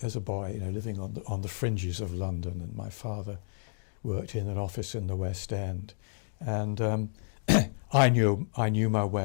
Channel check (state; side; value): silent; right; digital silence